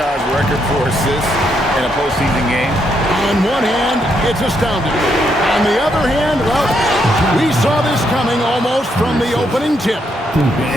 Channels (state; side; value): normal; both; correlation 0.77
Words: record for assists in a postseason game? On one hand, it's astounding. On the other hand, well, we saw this coming almost from the opening tip.